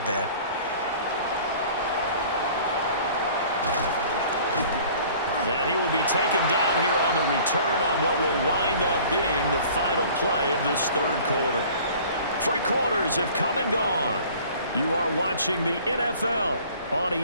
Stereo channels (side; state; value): both; inverted; correlation -0.49